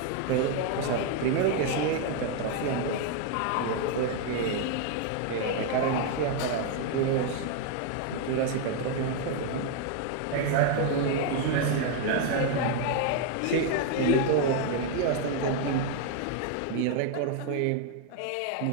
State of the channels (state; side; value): different; both; correlation 0.00